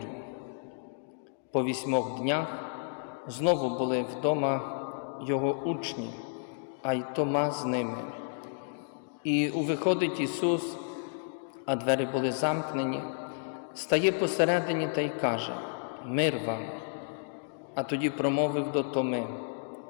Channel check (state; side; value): silent; right; digital silence